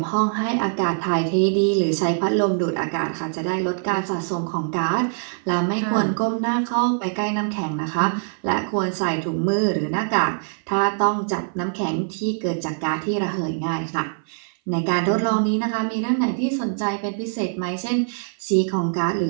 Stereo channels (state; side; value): silent; left; 57 dB below the other